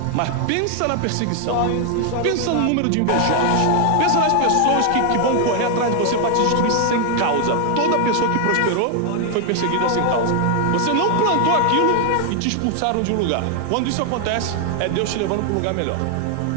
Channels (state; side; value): different; both; correlation 0.00